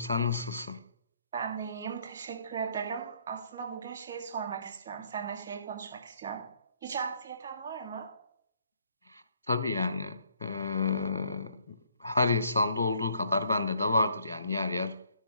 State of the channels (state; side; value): inverted; both; correlation -0.65